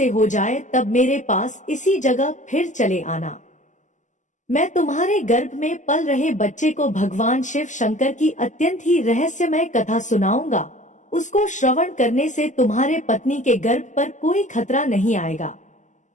हो जाए तब मेरे पास इसी जगह फिर चले आना। मैं तुम्हारे गर्भ में पल रहे बच्चे को भगवान शिव शंकर की अत्यंत ही रहस्यमय कथा सुनाऊंगा। उसको श्रवण करने से तुम्हारे पत्नी के गर्भ पर कोई खतरा नहीं आएगा।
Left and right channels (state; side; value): late; right; 0.36 ms